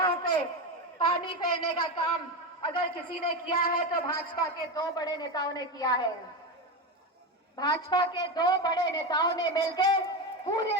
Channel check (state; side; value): normal; both; correlation 0.17